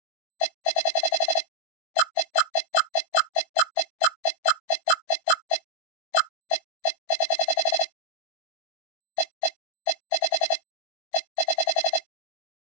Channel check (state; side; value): late; right; 20 ms